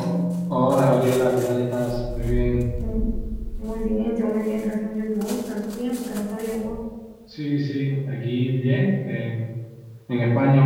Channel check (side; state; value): both; identical; correlation 1.00